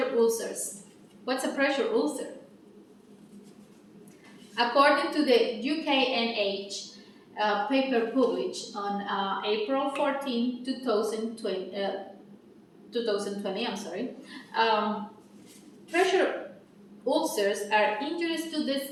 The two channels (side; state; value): both; identical; correlation 1.00